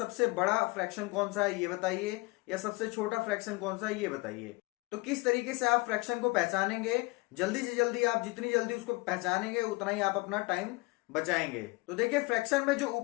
बड़ा फ्रैक्शन कौन सा है ये बताइए, या सबसे छोटा फ्रैक्शन कौन सा है ये बताइए। तो किस तरीके से आप फ्रैक्शन को पहचानेंगे, जल्दी से जल्दी आप जितनी जल्दी उसको पहचानेंगे उतना ही आप अपना टाइम बचाएंगे। तो देखिए फ्रैक्शन में जो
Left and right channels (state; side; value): quieter; right; 24.6 dB